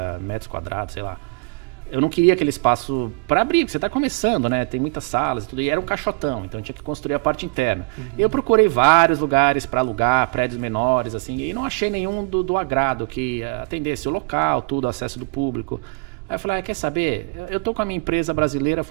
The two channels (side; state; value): left; quieter; 30.7 dB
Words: metros quadrados, sei lá. Eu não queria aquele espaço para abrir, porque você está começando, né? Tem muitas salas e tudo, e era um caixotão, então eu tinha que construir a parte interna. Eu procurei vários lugares para alugar, prédios menores, assim, e não achei nenhum do agrado que atendesse o local, tudo, acesso do público. Aí eu falei, quer saber? Eu tô com a minha empresa brasileira